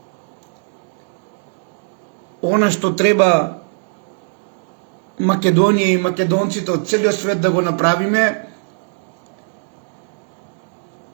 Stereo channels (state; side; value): silent; left; digital silence